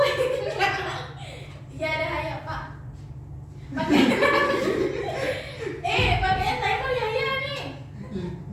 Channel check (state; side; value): identical; both; correlation 1.00